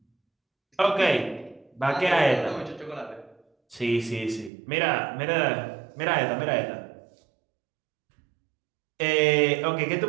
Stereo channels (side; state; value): left; drops out; at 4.5 s